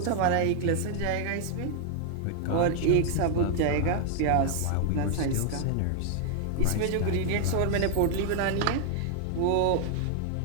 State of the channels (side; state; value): both; different; correlation 0.00